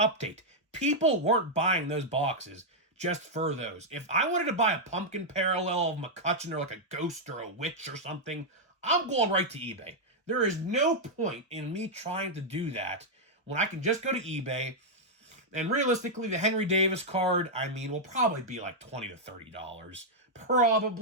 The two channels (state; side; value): normal; both; correlation -0.04